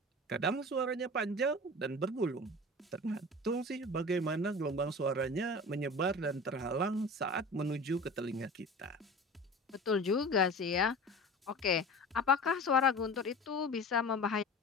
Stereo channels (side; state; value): both; normal; correlation 0.36